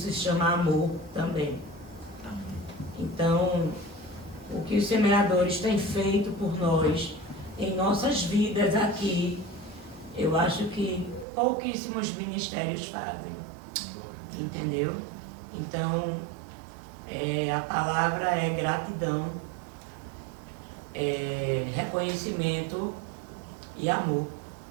se chama amor também. Então, o que os semeadores têm feito por nós, em nossas vidas aqui, eu acho que pouquíssimos ministérios fazem, entendeu? Então, a palavra é gratidão, reconhecimento e amor.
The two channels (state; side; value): drops out; left; at 11.2 s